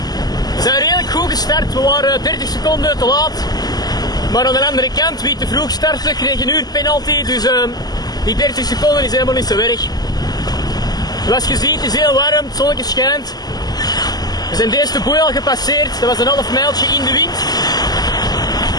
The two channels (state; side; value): late; right; 0.19 ms